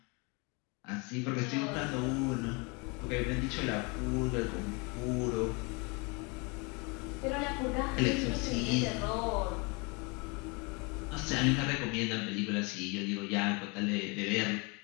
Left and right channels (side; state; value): right; quieter; 30.0 dB